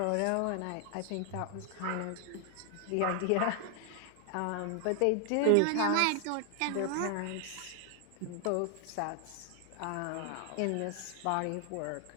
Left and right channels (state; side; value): different; both; correlation 0.00